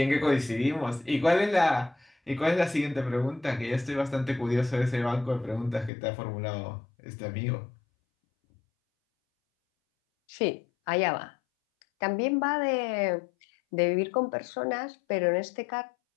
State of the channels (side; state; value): right; drops out; at 5.9 s